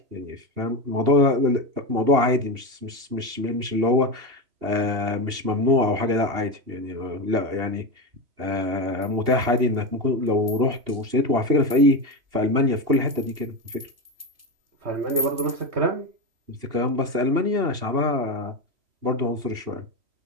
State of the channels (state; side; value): late; left; 2.8 ms